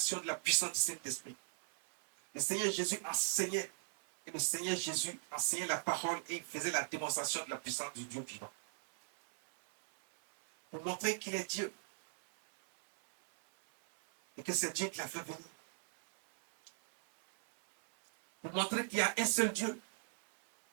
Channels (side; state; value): left; silent; 52 dB below the other